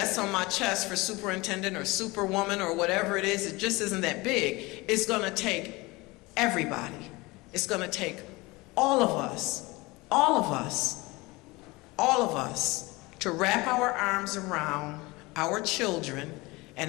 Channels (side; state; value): right; quieter; 22.9 dB